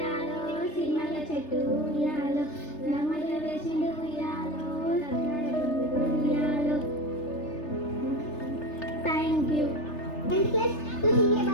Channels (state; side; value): late; right; 3.3 ms